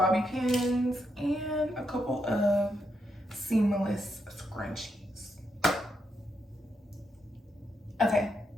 pins and a couple of seamless scrunchies. Okay,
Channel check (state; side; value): normal; both; correlation 0.81